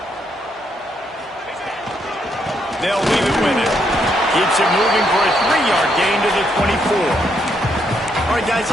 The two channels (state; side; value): normal; both; correlation 0.76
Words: They'll leave it with it. Keeps it moving for a 3-yard gain to the 24. All right, guys,